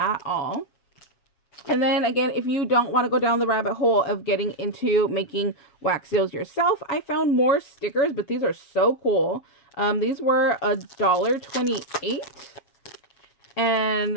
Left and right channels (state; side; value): late; right; 7.3 ms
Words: all. And then again, if you don't want to go down the rabbit hole of getting into making wax seals yourself, I found more stickers, but these are so cool. These were $1.28.